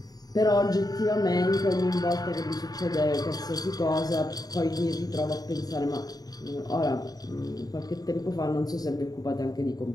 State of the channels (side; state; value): right; late; 0.18 ms